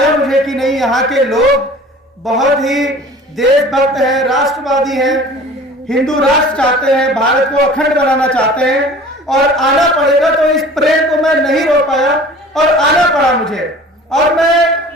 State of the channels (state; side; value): normal; both; correlation 0.44